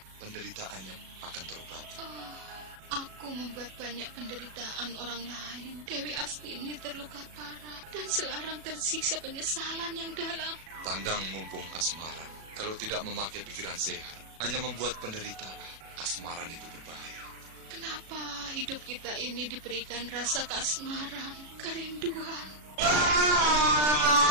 Penderitaannya akan terobati. Oh, aku membuat banyak penderitaan orang lain. Dewi Astini terluka parah dan Selarang tersiksa penyesalan yang dalam. Tandang mumpung kasmaran. Kalau tidak memakai pikiran sehat, hanya membuat penderitaan. Kasmaran itu berbahaya. Kenapa hidup kita ini diberikan rasa kasmaran, kerinduan?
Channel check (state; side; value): late; left; 37 ms